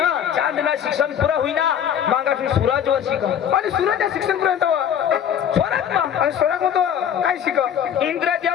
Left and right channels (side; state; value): right; quieter; 9.0 dB